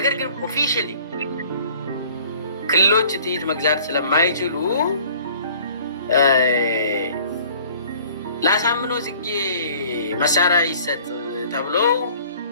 ግን ኦፊሻሊ ክልሎች ጥይት መግዛት ስለማይችሉ ለአሳምነው ጽጌ መሳሪያ ይሰጥ ተብሎ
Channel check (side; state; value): both; inverted; correlation -0.52